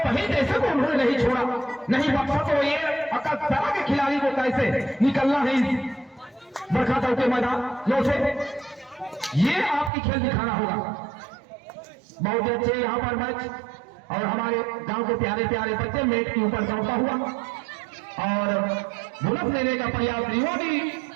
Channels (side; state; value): left; drops out; at 9.9 s